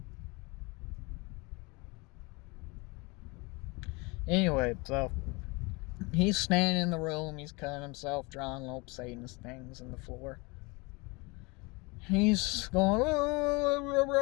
Anyway, so he's standing in the room, he's cutting himself, drawing little Satanist things in the floor. He's going,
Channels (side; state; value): right; quieter; 27.0 dB